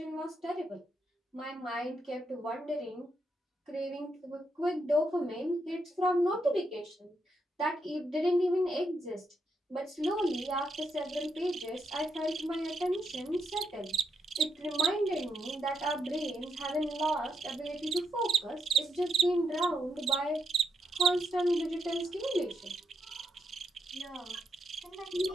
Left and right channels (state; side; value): normal; both; correlation 0.80